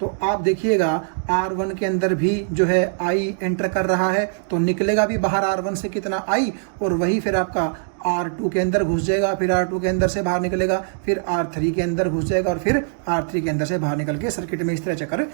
आप देखिएगा R1 के अंदर भी जो है I एंटर कर रहा है, तो निकलेगा भी बाहर R1 से कितना I, और वही फिर आपका R2 के अंदर घुस जाएगा, फिर R2 के अंदर से बाहर निकलेगा, फिर R3 के अंदर घुस जाएगा, और फिर R3 के अंदर से बाहर निकल के सर्किट में इस तरह चक्कर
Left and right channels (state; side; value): silent; left; digital silence